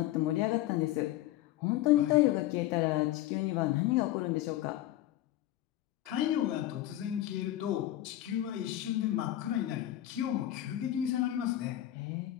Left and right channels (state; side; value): quieter; right; 14.1 dB